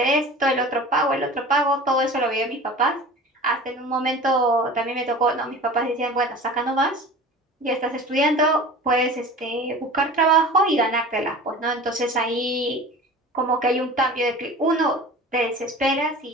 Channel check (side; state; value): both; normal; correlation 0.38